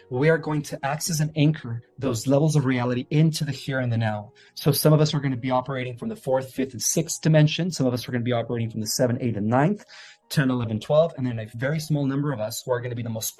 we are going to act as an anchor those levels of reality into the here and the now. So some of us are going to be operating from the 4th, 5th, and 6th dimension. Some of us are going to be operating from the 7, 8, and 9th, 10, 11, 12. And then a very small number of us who are going to be the most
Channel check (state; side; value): identical; both; correlation 1.00